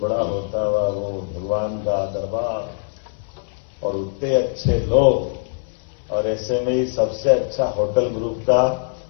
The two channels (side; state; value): right; silent; digital silence